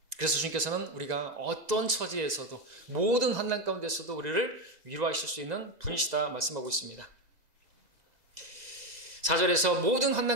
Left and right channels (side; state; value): left; late; 2.0 ms